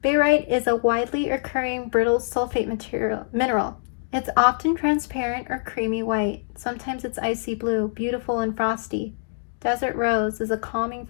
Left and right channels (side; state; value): right; silent; digital silence